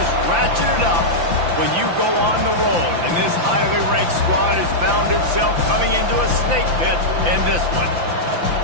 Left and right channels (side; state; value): left; late; 5.9 ms